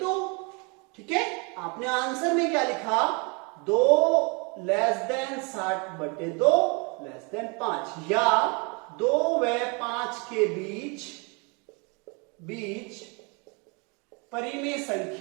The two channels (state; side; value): quieter; left; 31.9 dB